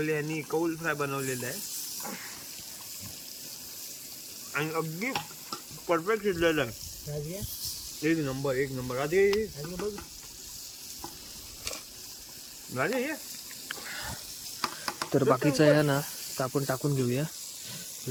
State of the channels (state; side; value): identical; both; correlation 1.00